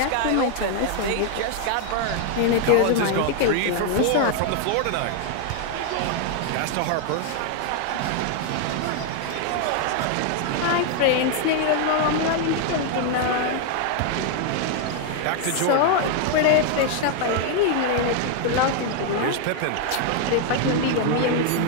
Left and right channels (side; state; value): both; different; correlation 0.00